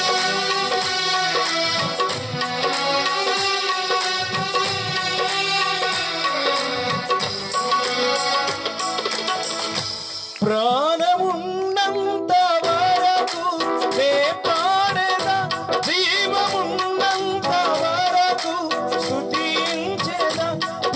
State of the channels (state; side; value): identical; both; correlation 1.00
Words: ప్రాణమున్నంత వరకు నే పాడేదా, జీవమున్నంత వరకు స్తుతించేదా.